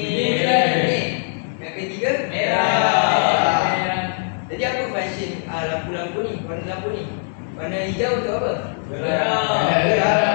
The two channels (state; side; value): silent; right; digital silence